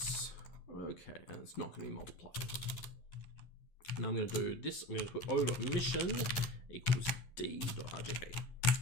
Okay, and it's not going to be multiplied. Now I'm going to do this. I'm going to put O.emission equals D.RGB.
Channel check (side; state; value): right; late; 11 ms